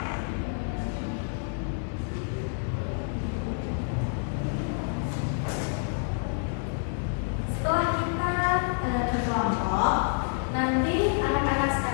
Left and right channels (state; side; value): silent; right; 59 dB below the other